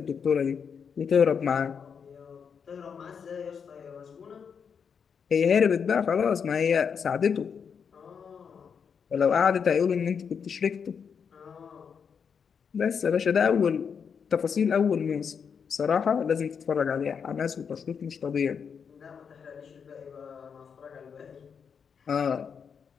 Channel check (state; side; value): quieter; right; 6.6 dB